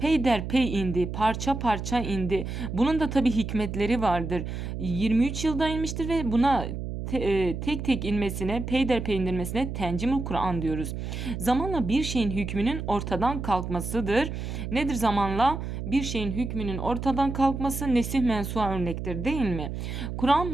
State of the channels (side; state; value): right; noise; hum, 5 dB below the sound